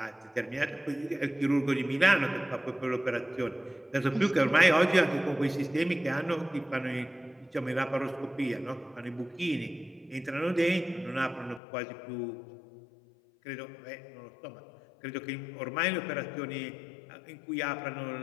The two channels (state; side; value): drops out; right; at 11.6 s